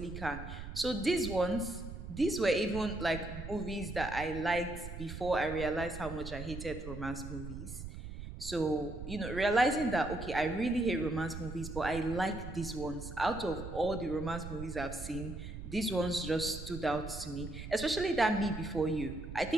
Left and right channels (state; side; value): noise; right; rumble, 9 dB below the sound